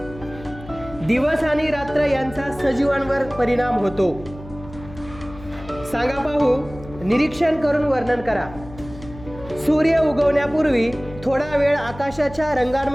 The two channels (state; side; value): noise; left; hum, 16 dB below the sound